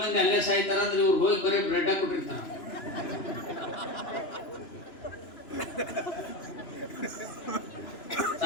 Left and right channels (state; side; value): late; right; 2.9 ms